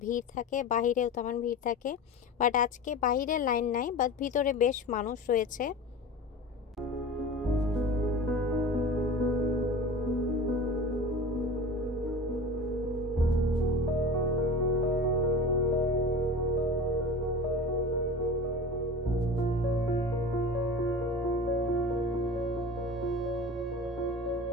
ভিড় থাকে বাহিরেও তেমন ভিড় থাকে। বাট আজকে বাহিরে লাইন নাই, বাট ভিতরে বেশ মানুষ রয়েছে।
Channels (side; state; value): both; normal; correlation 0.33